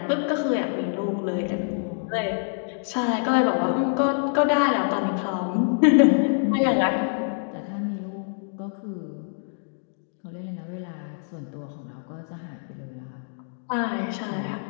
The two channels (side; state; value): right; silent; digital silence